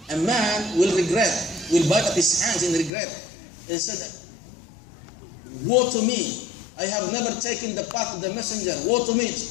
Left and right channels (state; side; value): drops out; right; at 2.9 s